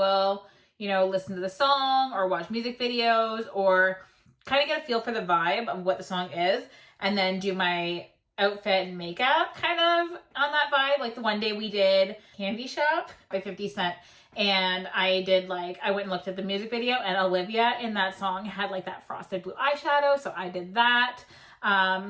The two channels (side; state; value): both; identical; correlation 1.00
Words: listen to the song or watch music videos or kind of get a feel for the vibe of what the song is and then do my outfit and makeup kind of on that vibe. Like the one day we did Candy Shop by 50 Cent and I went and looked at the music video and Olivia in that song had like that frosted blue eyeshadow. So I did that.